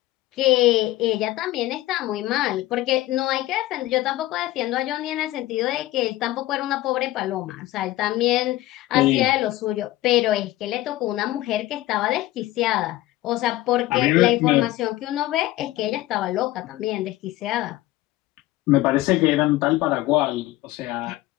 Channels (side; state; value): right; quieter; 16.6 dB